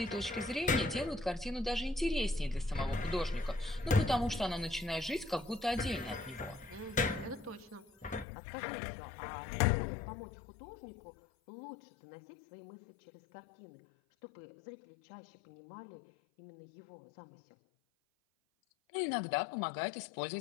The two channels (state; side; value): drops out; right; at 8.2 s